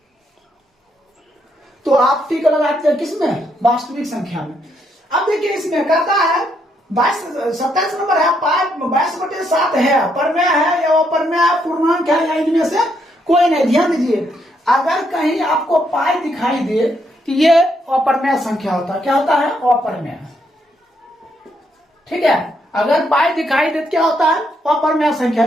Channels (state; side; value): normal; both; correlation 0.75